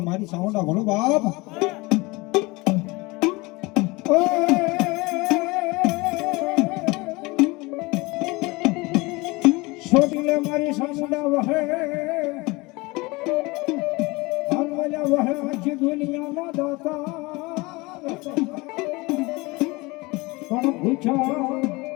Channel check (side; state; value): right; quieter; 23.9 dB